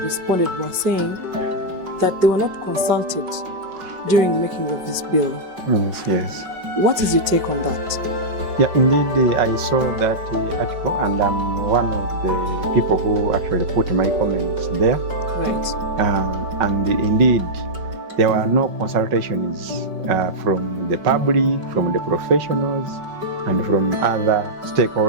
responded were saying that they were not consulted during the making of this bill. Yes. What is your take on that? Yeah, indeed, I saw that article, and I'm one of the people who actually put my comments there. Right. And indeed, there were no consultations from the public, from the professionals, and from other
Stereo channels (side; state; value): left; late; 5.3 ms